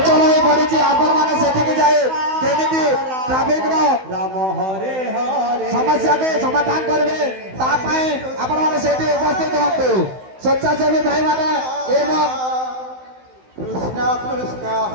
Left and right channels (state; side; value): late; left; 16 ms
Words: ହୋଇ ପଡିଛି। ଆପଣମାନେ ସେଠିକି ଯାଇ କେମିତି ଟ୍ରାଫିକର ସମସ୍ୟାକୁ ସମାଧାନ କରିବେ ତା ପାଇଁ ଆପଣମାନେ ସେଠି ଉପସ୍ଥିତ ହୁଅନ୍ତୁ। ସ୍ୱେଚ୍ଛାସେବୀ ଭାଇମାନେ ଏବଂ